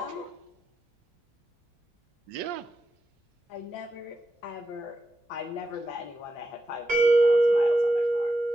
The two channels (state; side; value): normal; both; correlation 0.88